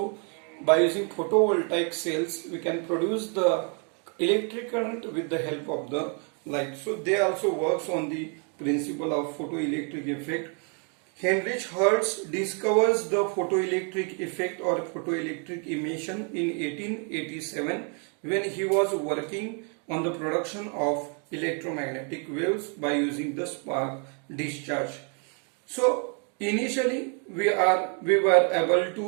by using photovoltaic cells, we can produce the electric current with the help of the light. So they also works on the principle of photoelectric effect. Heinrich Hertz discovers the photoelectric effect or photoelectric emission in 1887 when he was working on the production of electromagnetic waves by using the spark discharge. So initially we were able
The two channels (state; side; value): quieter; left; 39.6 dB